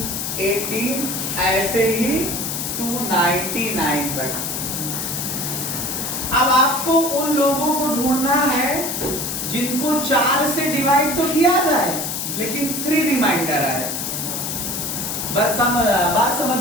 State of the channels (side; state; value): left; noise; hiss, 3 dB below the sound